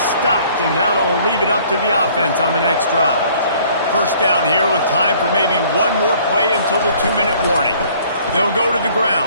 stopped, and that'll leave it up to the offense on the next drive. First down here with time for maybe one more play until the 2-minute warning. They'll go to the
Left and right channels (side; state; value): both; inverted; correlation -0.57